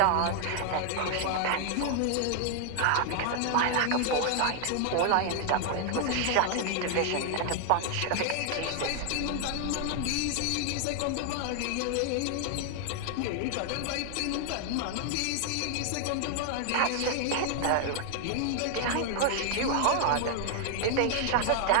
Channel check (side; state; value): both; different; correlation 0.00